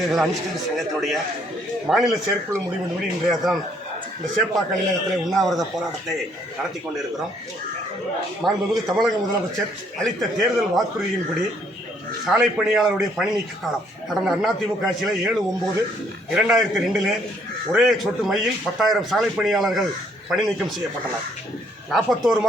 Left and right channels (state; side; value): normal; both; correlation 0.67